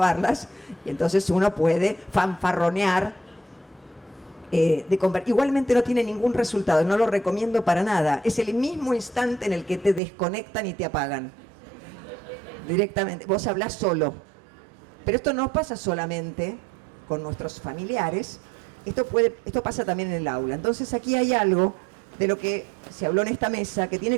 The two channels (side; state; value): left; drops out; at 10.0 s